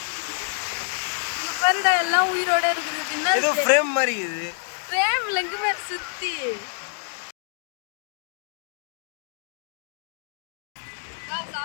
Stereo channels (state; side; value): silent; right; digital silence